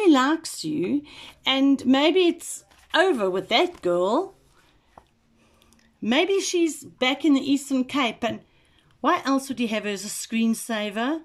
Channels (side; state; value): both; identical; correlation 1.00